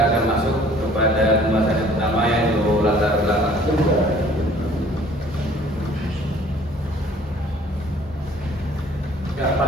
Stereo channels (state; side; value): normal; both; correlation 0.54